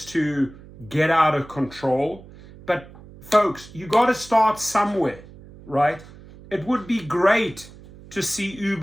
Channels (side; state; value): right; noise; hum, 20 dB below the sound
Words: to get out of control. But folks, you got to start somewhere, right? It would be great to see